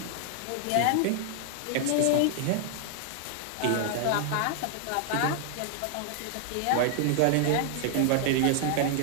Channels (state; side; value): different; both; correlation 0.00